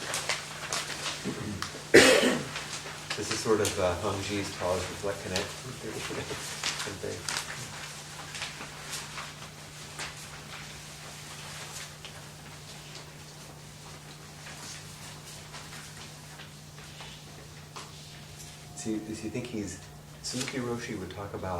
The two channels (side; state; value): both; identical; correlation 1.00